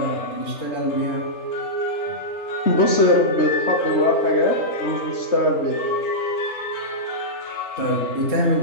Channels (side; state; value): right; late; 3.2 ms